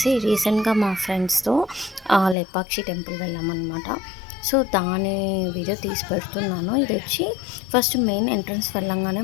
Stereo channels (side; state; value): right; drops out; at 2.4 s